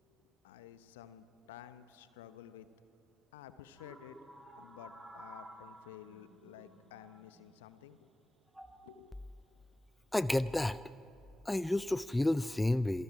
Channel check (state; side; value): normal; both; correlation 0.97